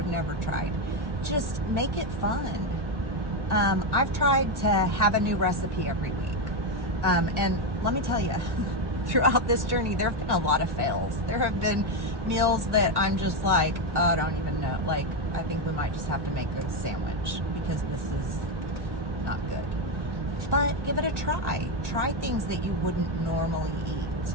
never tried. Just make it fun. I've tried to have a new recipe every week. And let me tell you, throughout this journey, there have been a lot of fails. There have been meals that I'm just like, oh, I don't even know. Like, I think we might just have to make a sandwich because this is not good. But give it a try. Try things that you wouldn't normally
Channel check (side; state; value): left; late; 1.2 ms